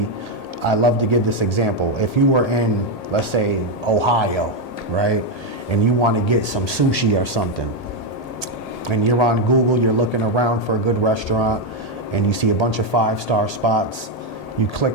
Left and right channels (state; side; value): late; right; 1.8 ms